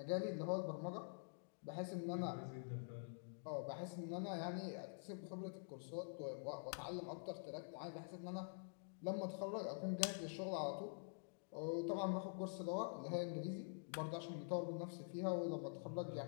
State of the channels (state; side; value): silent; right; digital silence